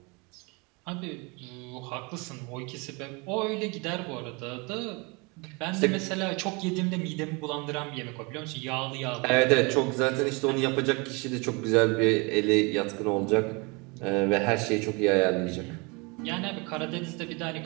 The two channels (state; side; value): quieter; left; 28.8 dB